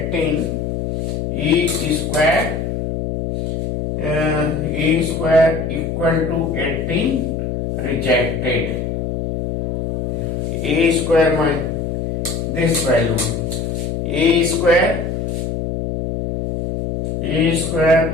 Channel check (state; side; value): noise; left; hum, 3 dB below the sound